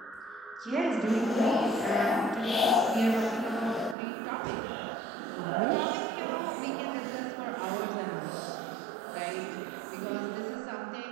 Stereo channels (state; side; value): drops out; left; at 4.0 s